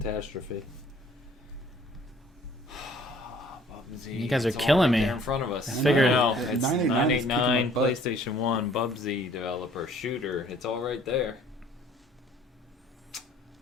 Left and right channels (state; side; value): normal; both; correlation 0.56